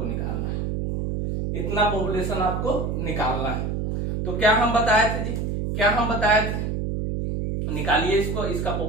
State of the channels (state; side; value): noise; right; hum, 2 dB below the sound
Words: निकालना है। इतना पॉपुलेशन आपको निकालना है। तो क्या हम बताए थे जी, क्या हम बताए थे, निकालिए इसको, इसका